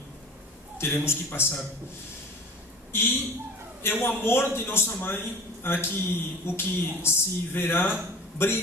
teremos que passar. E é o amor de nossa mãe o que se verá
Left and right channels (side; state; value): both; normal; correlation 0.41